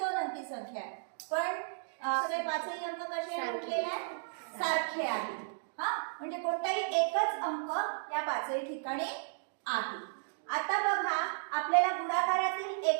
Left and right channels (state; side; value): silent; left; digital silence